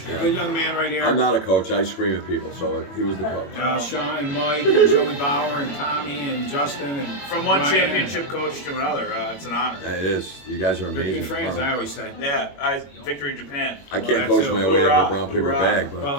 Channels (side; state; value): right; late; 21 ms